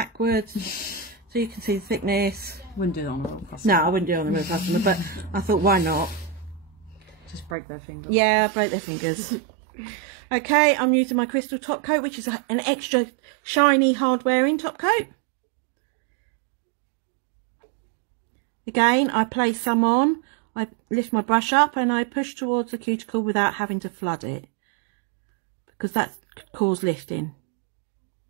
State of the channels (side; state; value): left; drops out; at 7.6 s